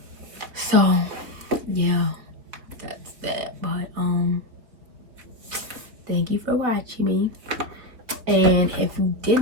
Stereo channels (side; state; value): left; late; 3.7 ms